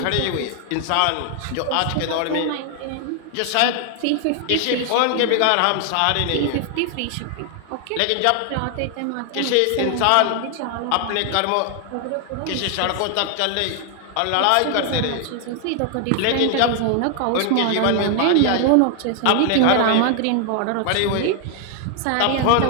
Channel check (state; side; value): different; both; correlation 0.00